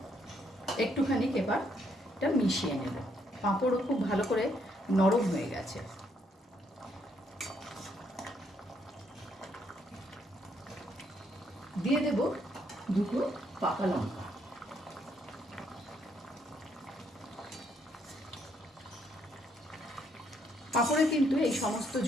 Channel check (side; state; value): both; normal; correlation 0.72